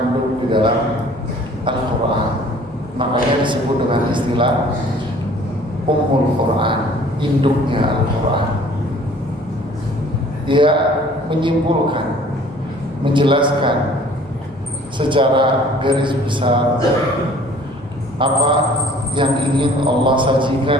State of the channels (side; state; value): both; normal; correlation 0.52